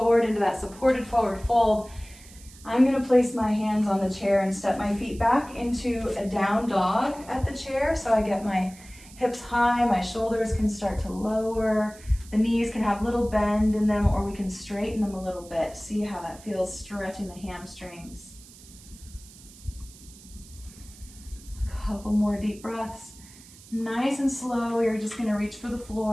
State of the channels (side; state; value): right; noise; hiss, 21 dB below the sound